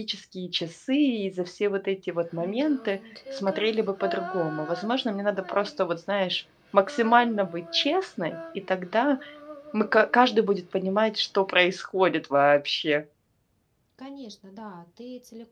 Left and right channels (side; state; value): both; identical; correlation 1.00